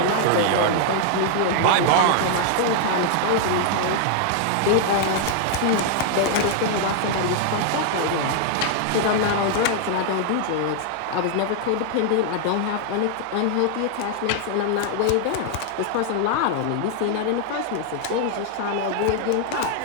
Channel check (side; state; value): both; different; correlation 0.00